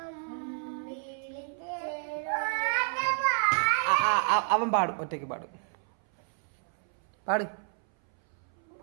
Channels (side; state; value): left; silent; 58 dB below the other